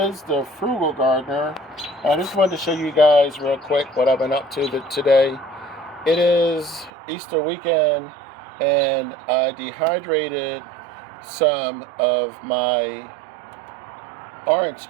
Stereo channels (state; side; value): drops out; left; at 6.9 s